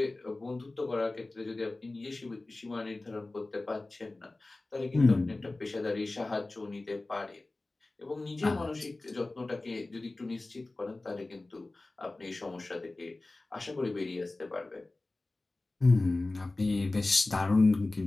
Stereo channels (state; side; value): quieter; right; 3.0 dB